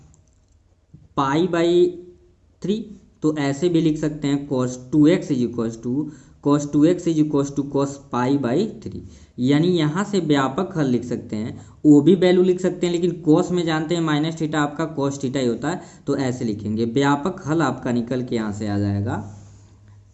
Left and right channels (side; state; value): both; identical; correlation 1.00